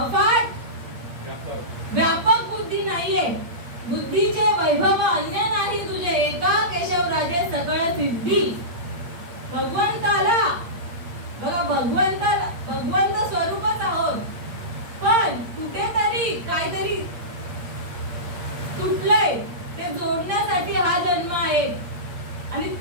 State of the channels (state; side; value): late; left; 8.7 ms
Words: व्यापक बुद्धी नाहीये. बुद्धीचे वैभव अन्य नाही तुझे, एका केशवराजे सकळ सिद्धी. भगवंताला बघा, भगवंत स्वरूपच आहोत, पण कुठेतरी काहीतरी तुटलंय, ते जोडण्यासाठी हा जन्म आहे. आणि